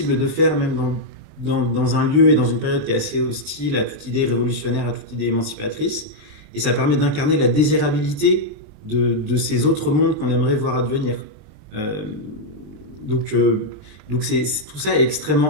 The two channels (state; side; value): late; left; 20 ms